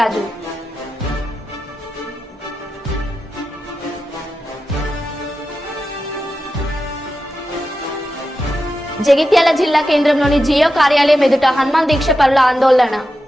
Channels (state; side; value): normal; both; correlation 0.90